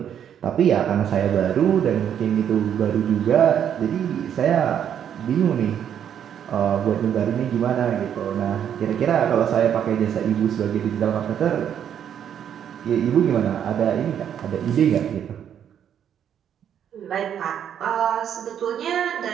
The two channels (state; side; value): quieter; left; 9.1 dB